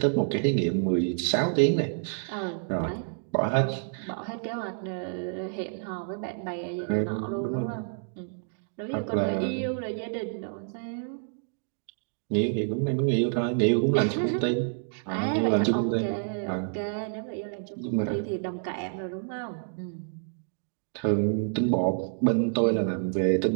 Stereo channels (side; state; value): left; silent; digital silence